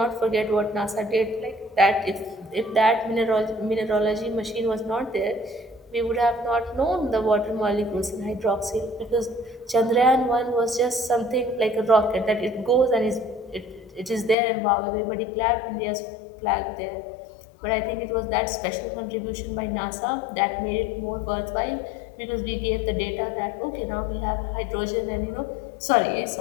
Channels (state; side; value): drops out; right; at 14.4 s